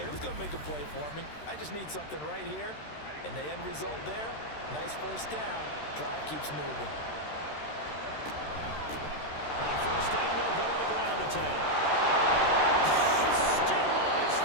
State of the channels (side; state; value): right; late; 13 ms